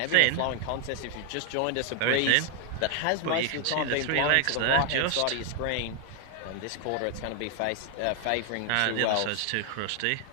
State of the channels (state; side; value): different; both; correlation 0.00